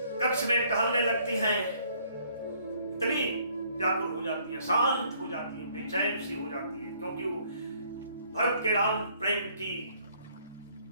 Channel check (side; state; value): both; inverted; correlation -0.63